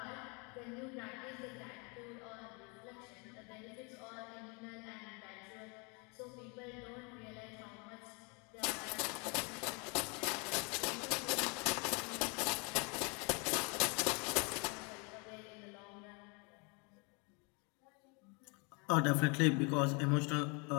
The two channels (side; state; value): right; quieter; 32.3 dB